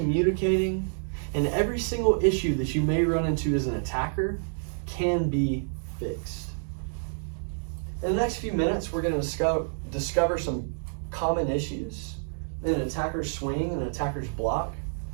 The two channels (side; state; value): left; silent; digital silence